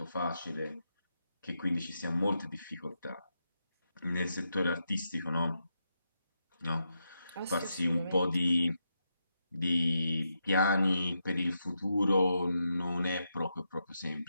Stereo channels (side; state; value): both; inverted; correlation -0.84